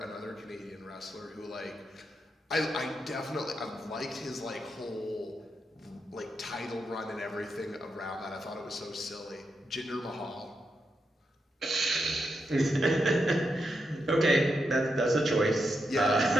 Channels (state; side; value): normal; both; correlation 0.84